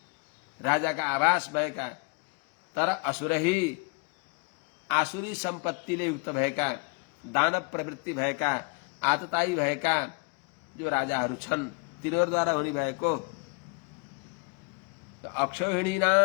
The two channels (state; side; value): quieter; right; 33.3 dB